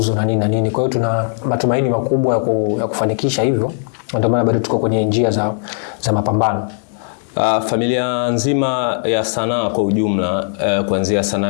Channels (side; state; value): right; silent; 67 dB below the other